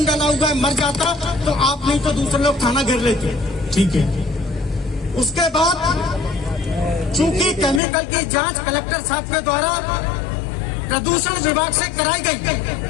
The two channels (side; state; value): right; drops out; at 7.8 s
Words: डाला हुआ है, मर जाता तो आप नहीं तो दूसरे लोग थाना घेर लेते। ठीक है। उसके बाद चूंकि केमिकल की जांच कलेक्टर साहब के द्वारा प्रदूषण विभाग से कराई गई,